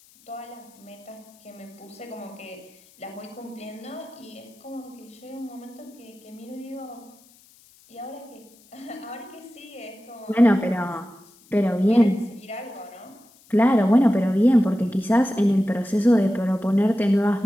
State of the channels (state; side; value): noise; left; hiss, 28 dB below the sound